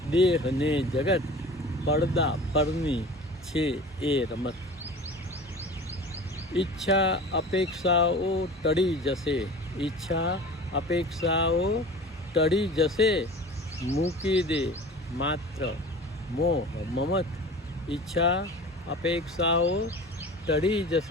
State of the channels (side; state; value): both; normal; correlation 0.39